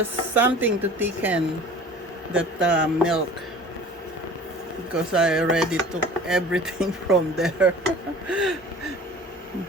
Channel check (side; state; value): both; normal; correlation 0.43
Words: something to thicken that milk, because I already took everything from there.